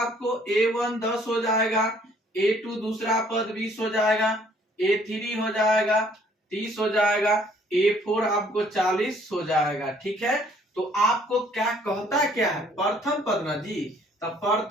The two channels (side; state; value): both; normal; correlation 0.61